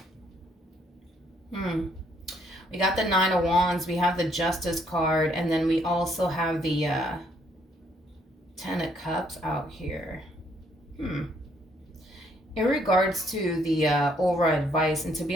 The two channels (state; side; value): normal; both; correlation 0.68